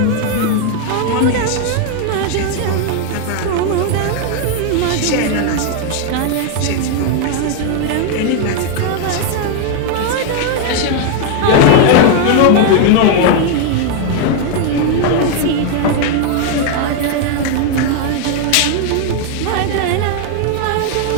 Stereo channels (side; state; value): both; different; correlation 0.00